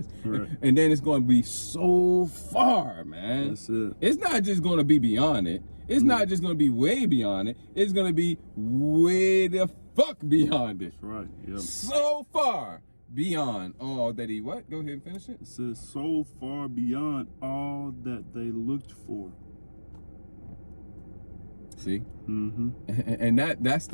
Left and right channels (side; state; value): both; inverted; correlation -1.00